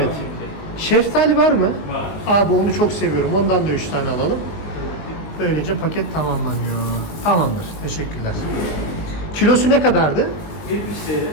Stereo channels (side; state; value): right; late; 19 ms